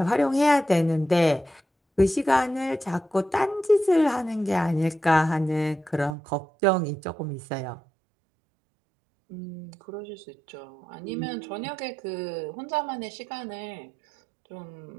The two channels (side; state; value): left; drops out; at 6.1 s